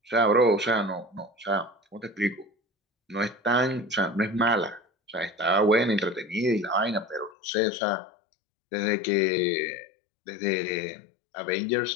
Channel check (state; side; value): drops out; right; at 7.3 s